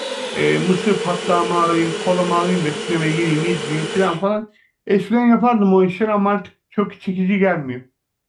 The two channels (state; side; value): identical; both; correlation 1.00